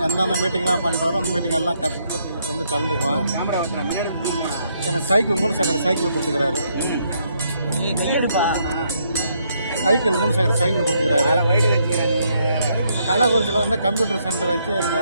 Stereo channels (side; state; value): both; inverted; correlation -0.74